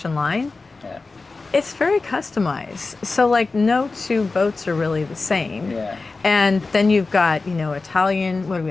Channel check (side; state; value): right; quieter; 3.8 dB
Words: line, it's very customized. So like no two boats are really the same. And then you've got,